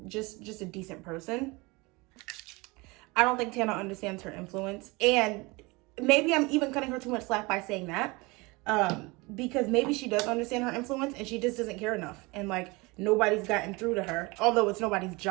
just a decent person. I don't think Tana understands her influence, and maybe I'm even cutting her too much slack by saying that, because maybe she does understand her influence and she just doesn't care enough. And nobody's gotten through to her. Although it's nobody's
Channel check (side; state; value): left; quieter; 24.9 dB